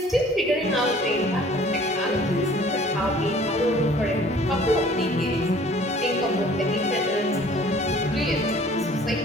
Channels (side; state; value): both; normal; correlation 0.52